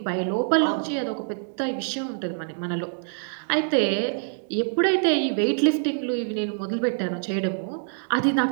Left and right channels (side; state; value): left; silent; digital silence